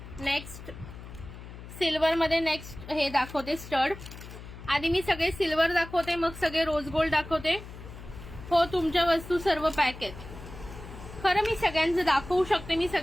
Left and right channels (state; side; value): noise; left; hum, 14 dB below the sound